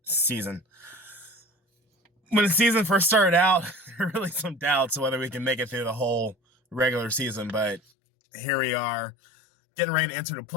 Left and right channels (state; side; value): drops out; right; at 7.8 s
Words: season. When the season first started out, there were really some doubts whether we can make it through the whole regular season, but here we are, getting ready to enter the